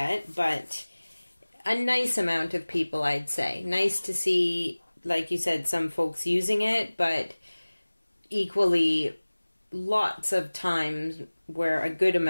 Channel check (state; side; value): inverted; both; correlation -1.00